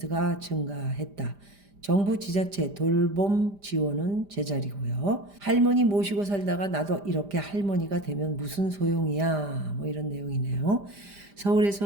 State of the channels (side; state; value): left; late; 5.0 ms